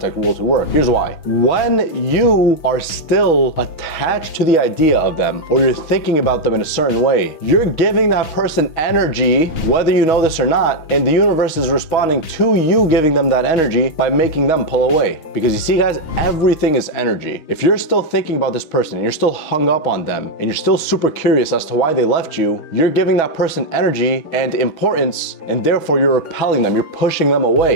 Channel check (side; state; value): right; late; 6.3 ms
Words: rule to work. Here's why. When you are still attached to the idea of them, or you're thinking about them in a certain way, you're giving that person energy, whether you know this or not, and the universe is responding to you giving them that energy by making them pull away. Because you see, guys, everything is energy. If you're still thinking about this person and you're still hung up on them and you're still super curious as to why they left you, you're giving that person energy and importance, and therefore you're repelling them, you're pushing them